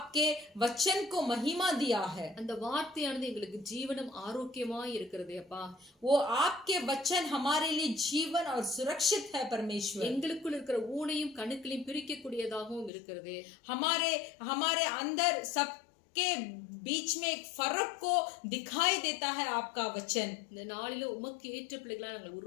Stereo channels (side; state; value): right; drops out; at 12.9 s